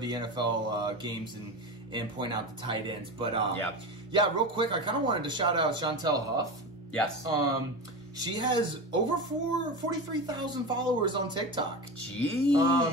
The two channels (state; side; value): normal; both; correlation 0.24